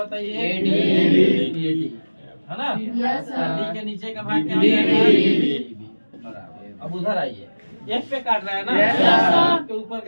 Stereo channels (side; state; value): both; inverted; correlation -1.00